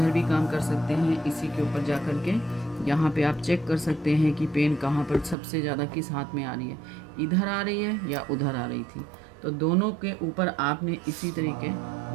भी काम कर सकते हैं। इसी के ऊपर जा कर के यहाँ पे आप चेक कर सकते हैं कि पेन कहाँ पर सबसे ज़्यादा किस हाथ में आ रही है, इधर आ रही है या उधर आ रही थी। तो दोनों के ऊपर आपने इसी तरीके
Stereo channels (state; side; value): drops out; left; at 5.4 s